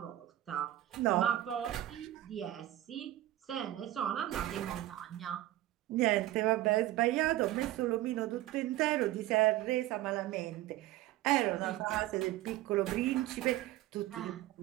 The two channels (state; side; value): quieter; left; 15.1 dB